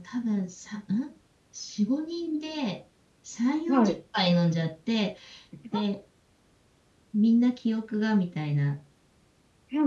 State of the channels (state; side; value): identical; both; correlation 1.00